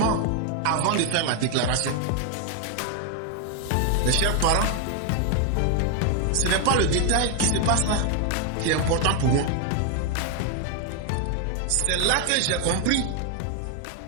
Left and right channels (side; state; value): both; different; correlation 0.00